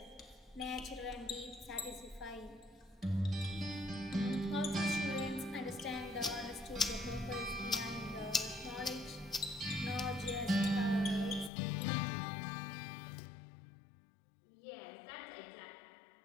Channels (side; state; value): right; drops out; at 11.5 s